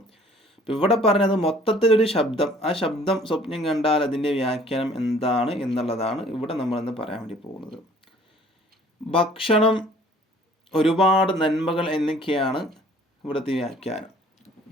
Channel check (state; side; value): normal; both; correlation 0.55